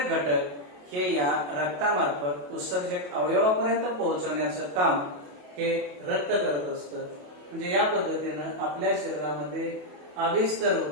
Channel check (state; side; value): late; left; 28 ms